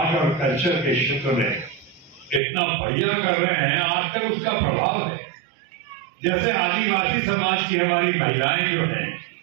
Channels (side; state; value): left; drops out; at 2.4 s